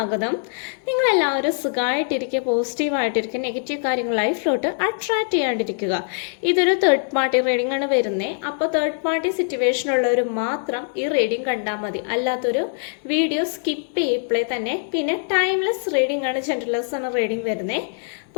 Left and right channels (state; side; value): silent; right; digital silence